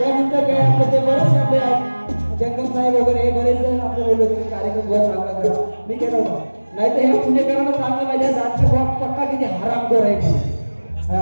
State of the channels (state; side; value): inverted; both; correlation -1.00